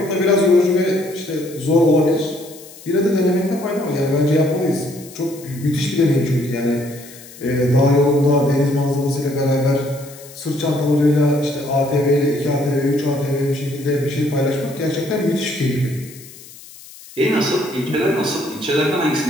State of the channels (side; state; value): left; noise; hiss, 19 dB below the sound